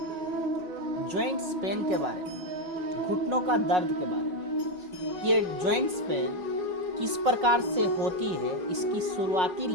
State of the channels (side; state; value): left; late; 5.5 ms